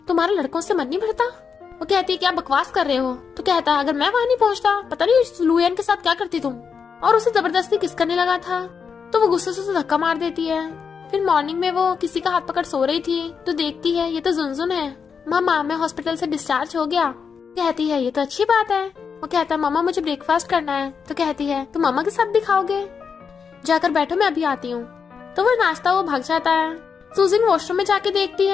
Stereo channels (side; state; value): right; quieter; 6.1 dB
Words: तुम्हारा लड़कों से मन नहीं भरता? वो कहती है क्या बकवास कर रहे हो? तो कहता है अगर मैं वहाँ नहीं पहुँचता पता नहीं लुयन के साथ क्या करती तुम, और उसे जबरदस्ती किस करने लगा था। तो वो गुस्से से उसे धक्का मार देती है। फिर मॉर्निंग में वो किसी का हाथ पकड़ सो रही थी तो देखती है ये तो जुनजुन है। मामा मैं हॉस्पिटल से डिस्चार्ज हो गया। कहती है ये तो अच्छी बात है। वो कहता है मामा मुझे ब्रेकफास्ट करना है। तो कहती है तुम मामा के साथ भी खाओगे? जाकर बैठो मैं अभी आती हूँ। तो वो नाश्ता वो भाग जाता है। सुजिन वॉशरूम में जाके देखती